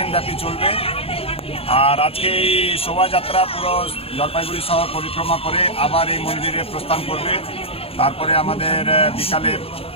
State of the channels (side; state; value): right; late; 0.28 ms